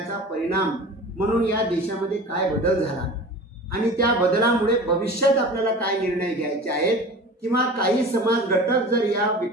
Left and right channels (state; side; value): normal; both; correlation 0.37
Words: परिणाम म्हणून या देशामध्ये काय बदल झाला आणि त्या बदलामुळे भविष्यात आपल्याला काय निर्णय घ्यायचे आहेत, किंवा काही समाज घटक जर या